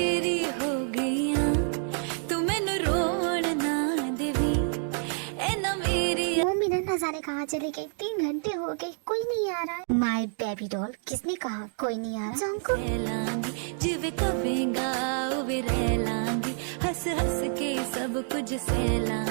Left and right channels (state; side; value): silent; left; 58 dB below the other